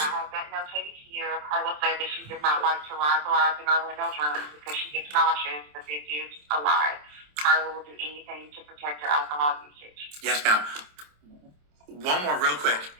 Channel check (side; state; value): left; late; 27 ms